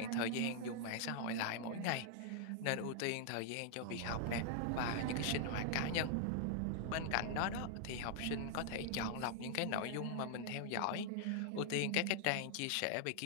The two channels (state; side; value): different; both; correlation 0.00